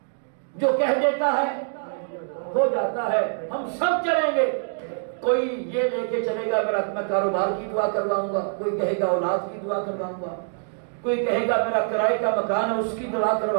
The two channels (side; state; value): left; silent; digital silence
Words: جو کہہ دیتا ہے ہو جاتا ہے، ہم سب چلیں گے. کوئی یہ لے کے چلے گا میرا میں کاروبار کی دعا کرواؤں گا، کوئی کہے گا اولاد کی دعا کرواؤں گا، کوئی کہے گا میرا کرائے کا مکان ہے اس کی دعا